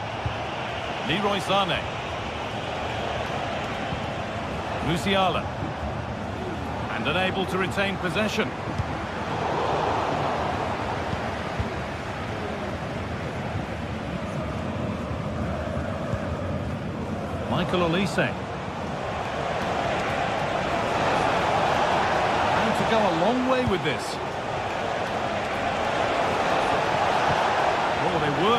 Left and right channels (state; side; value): identical; both; correlation 1.00